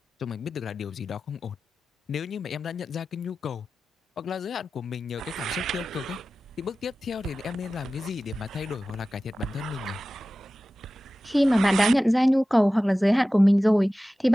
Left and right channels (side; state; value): both; normal; correlation 0.95